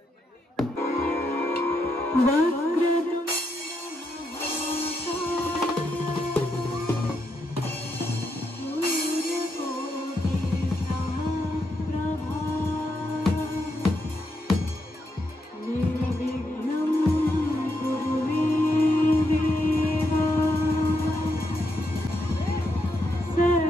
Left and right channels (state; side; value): normal; both; correlation 0.81